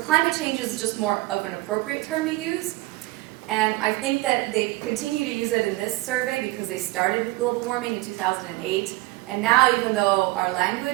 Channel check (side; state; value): left; quieter; 20.8 dB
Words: change is just more of an appropriate term to use. And I think that they continue to use it in this survey because they started with global warming in 2008. And now, even though our